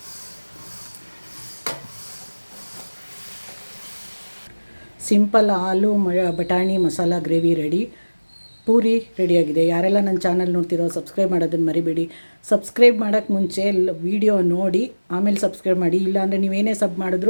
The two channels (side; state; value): both; inverted; correlation -1.00